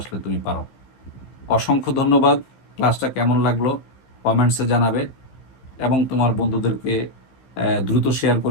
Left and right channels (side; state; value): right; late; 15 ms